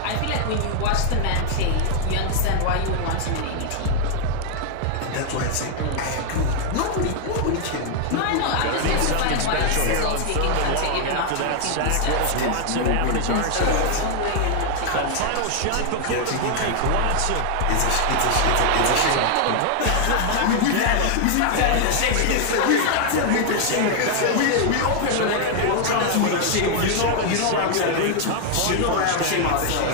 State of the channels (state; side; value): different; both; correlation 0.00